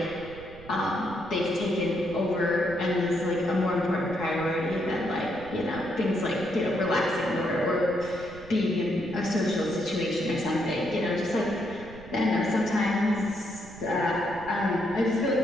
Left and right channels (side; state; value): right; noise; rumble, 18 dB below the sound